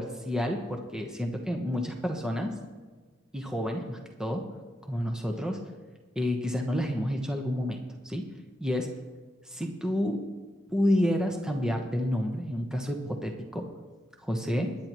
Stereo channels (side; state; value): both; normal; correlation 0.86